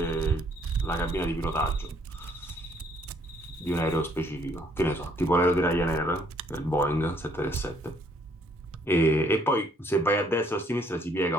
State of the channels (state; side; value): normal; both; correlation 0.65